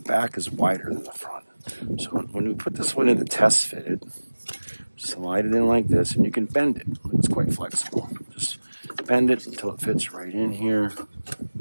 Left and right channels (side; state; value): both; inverted; correlation -1.00